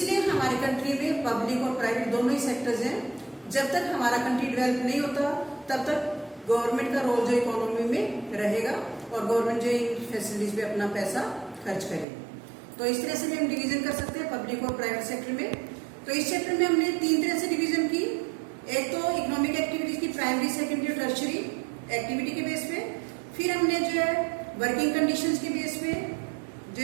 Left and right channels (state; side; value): drops out; left; at 12.1 s